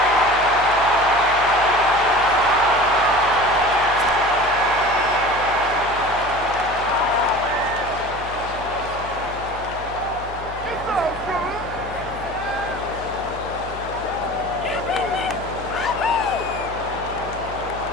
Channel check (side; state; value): left; noise; hum, 13 dB below the sound